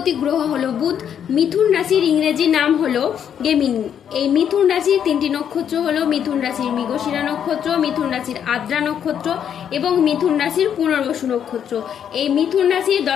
গ্রহ হলো বুধ। মিথুন রাশির ইংরেজি নাম হলো গেমিনি। এই মিথুন রাশির তিনটি নক্ষত্র হলো মিথুন রাশির মৃগশিরা নক্ষত্র, মিথুন রাশির আদ্রা নক্ষত্র এবং মিথুন রাশির পুনর্বসু নক্ষত্র। এই মিথুন রাশির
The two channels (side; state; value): right; quieter; 8.8 dB